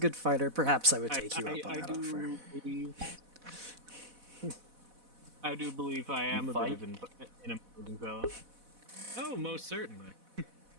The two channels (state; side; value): late; left; 4.1 ms